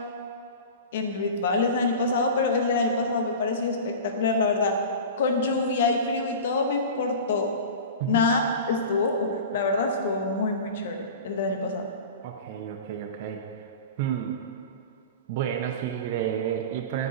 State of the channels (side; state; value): both; inverted; correlation -0.33